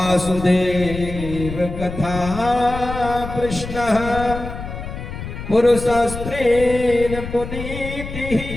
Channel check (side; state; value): left; noise; rumble, 9 dB below the sound